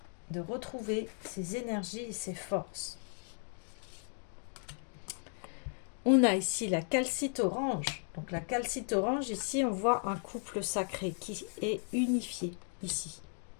de retrouver ses énergies et ses forces. On a ici la calcite orange. Donc la calcite orange, ici, on voit un couple sacré qui est unifié ici.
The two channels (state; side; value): silent; right; 54 dB below the other